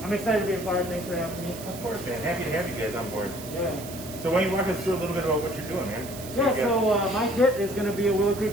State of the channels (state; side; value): noise; right; hiss, 14 dB below the sound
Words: I'm excited to be a part. Thanks for having me. Of course, man. Happy to have you guys on board. Yeah. So why don't you walk us through a little bit about what you're doing, man? Yeah, so my kit is going to be a Willow Creek